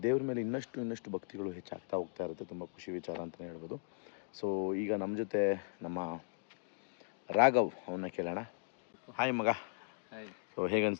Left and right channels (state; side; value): silent; right; digital silence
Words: ದೇವ್ರ ಮೇಲೆ ಇನ್ನಷ್ಟು ಭಕ್ತಿಗಳು ಹೆಚ್ಚಾಗ್ತಾ ಹೋಗ್ತಾ ಇರುತ್ತೆ. ತುಂಬ ಖುಷಿ ವಿಚಾರ ಅಂತಲೇ ಹೇಳ್ಬೋದು. ಸೊ ಈಗ ನಮ್ಮ ಜೊತೆ ನಮ್ಮ ರಾಘವ್, ಅವನ್ನ ಕೇಳೋಣ. ಹಾಯ್ ಮಗ. ಸೊ